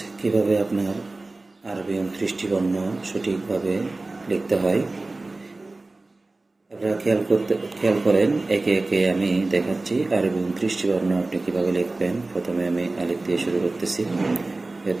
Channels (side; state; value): left; quieter; 3.2 dB